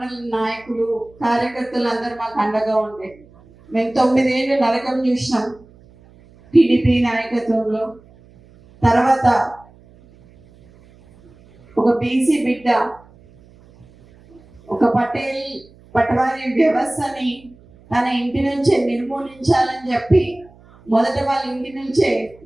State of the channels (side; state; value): right; noise; hum, 26 dB below the sound